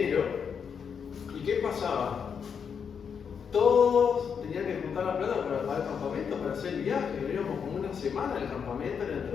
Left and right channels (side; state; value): right; quieter; 6.8 dB